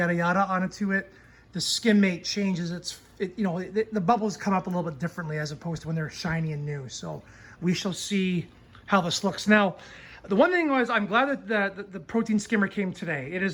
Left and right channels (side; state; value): both; identical; correlation 1.00